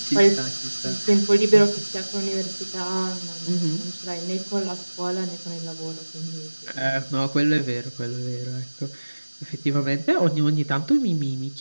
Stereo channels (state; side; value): inverted; both; correlation -1.00